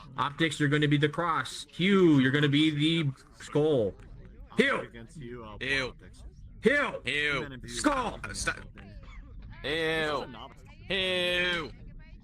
Optics, you're going to be the cross. Hugh, you're going to be the skull. Hugh. Ew. Hugh. Ew. Skull. Ew. Ew.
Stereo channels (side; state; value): both; identical; correlation 1.00